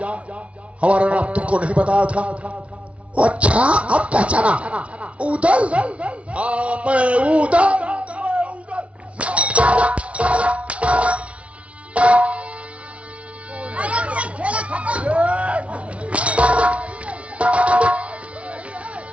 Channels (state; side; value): late; left; 0.063 ms